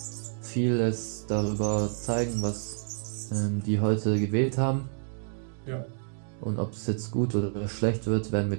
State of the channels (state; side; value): silent; left; digital silence